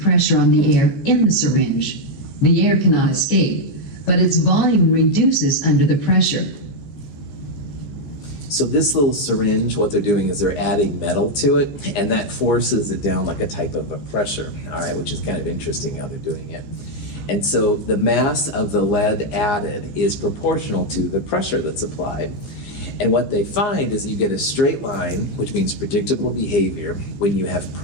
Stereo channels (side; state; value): right; late; 15 ms